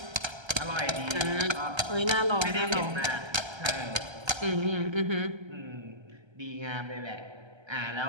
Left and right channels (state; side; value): late; left; 1.3 ms